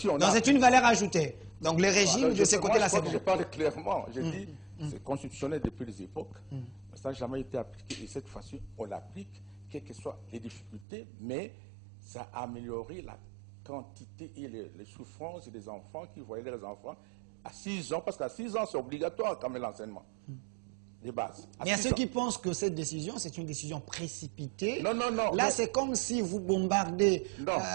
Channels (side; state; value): left; drops out; at 10.9 s